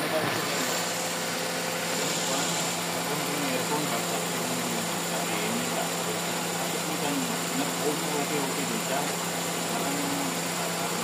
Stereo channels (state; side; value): identical; both; correlation 1.00